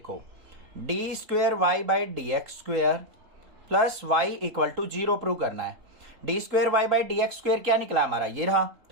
d²y/dx² plus y equal to 0 prove करना है। d²y/dx² क्या निकला हमारा, ये रहा।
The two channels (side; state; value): left; late; 3.8 ms